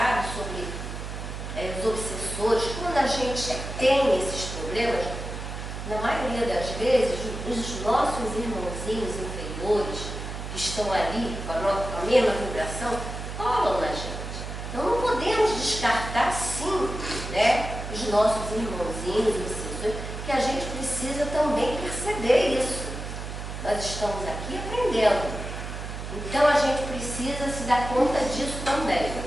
sobre os obsessores. Quando a gente tem esses problemas, na maioria das vezes, os nossos irmãozinhos inferiores, que estão ali com a mesma vibração, colam na gente. Então não podemos descartar, sim, né, os nossos irmãozinhos obsessores, que a gente precisa também perceber isso. Nós estamos aqui aprendendo. Então a gente precisa se dar conta disso também.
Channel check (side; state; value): right; noise; hum, 7 dB below the sound